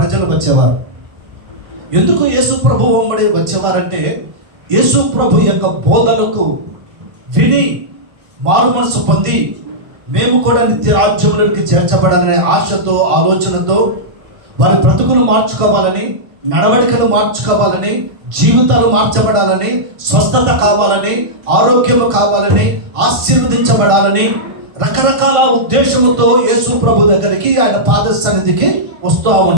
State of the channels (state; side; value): late; left; 1.5 ms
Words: వచ్చేవారు. ఎందుకు యేసు ప్రభు వెంబడి వచ్చేవారంటే యేసు ప్రభు యొక్క బోధనకు విని మారు మనసు పొంది మేము కూడా నిత్య రాజ్యంలోకి చేర్చబడాలనే ఆశతో, ఆలోచనతో వారి బ్రతుకులు మార్చుకోవాలని, నడవడికలు మార్చుకోవాలని, జీవితాలు మార్చబడాలని, స్వస్థత కావాలని, ఆరోగ్యం కావాలని, ఆశీర్వదించబడాలని రకరకాల ఉద్దేశముతో యేసు ప్రభు దగ్గరికి, ఆయన పాద సన్నిధికి వస్తూ